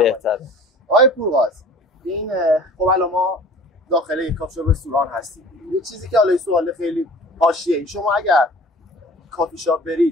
آقای پورغاز، این خب الان ما داخل این کافی شاپ رستوران هستیم. یه چیزی که حالا سوال خیلی حاشیه‌ای، شما اگر کافی شاپ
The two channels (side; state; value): both; normal; correlation 0.45